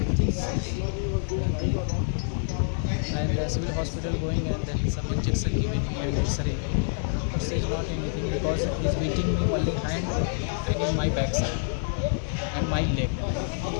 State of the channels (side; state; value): right; silent; digital silence